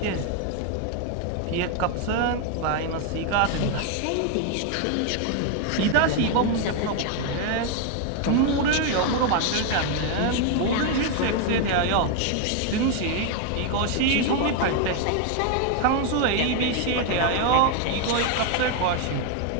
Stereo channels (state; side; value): different; both; correlation 0.01